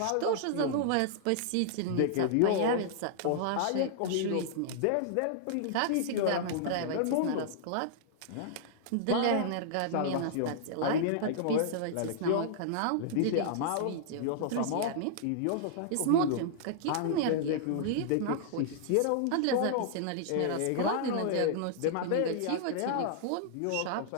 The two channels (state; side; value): different; both; correlation -0.01